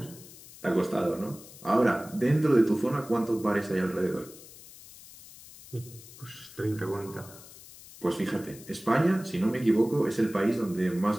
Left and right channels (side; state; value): left; noise; hiss, 19 dB below the sound